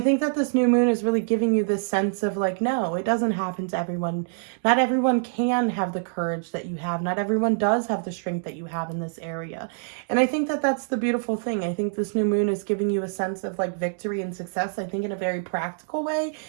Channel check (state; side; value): silent; left; digital silence